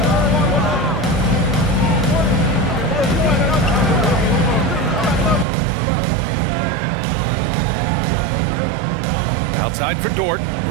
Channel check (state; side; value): drops out; left; at 5.5 s